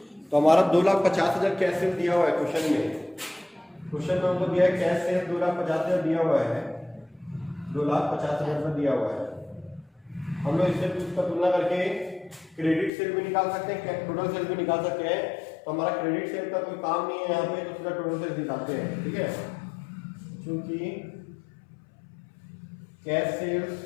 तो हमारा 2,50,000 कैश सेल दिया हुआ है क्वेश्चन में, क्वेश्चन में हमको दिया है कैश सेल 2,50,000 दिया हुआ है, 2,50,000 में दिया हुआ है। हम लोग इससे उसका तुलना करके क्रेडिट सेल भी निकाल सकते हैं, टोटल सेल भी निकाल सकते हैं। तो हमारा क्रेडिट सेल का कोई काम नहीं है यहाँ पे, तो सीधा टोटल सेल निकालते हैं, ठीक है। क्योंकि कैश सेल्स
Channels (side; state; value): right; drops out; at 12.9 s